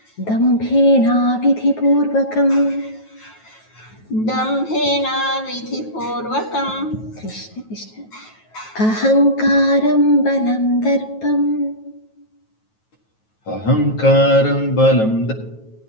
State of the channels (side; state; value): right; late; 9.3 ms